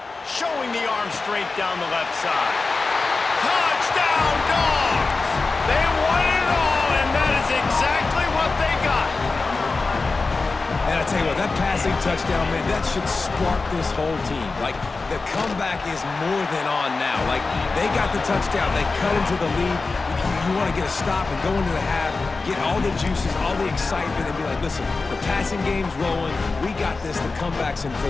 Showing the arm straight down the left side. Touchdown, Dogs! They won it all, and that is exactly what they got. And I tell you what, that passing touchdown, man, that should spark this whole team. Like, the comeback is more than on now. Like, they got the touchdown. They cut into the lead. You want to get a stop and go into the half, get all the juices, all the excitement, and be like, listen, the passing game's rolling. We got this. The comeback's in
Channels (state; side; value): quieter; right; 3.9 dB